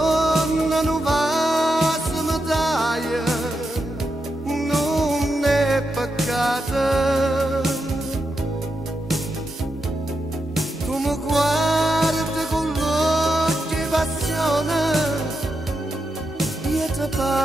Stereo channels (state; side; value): normal; both; correlation 0.86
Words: non va se mi dai non è peccato. Tu mi guardi con l'occhio passione e ti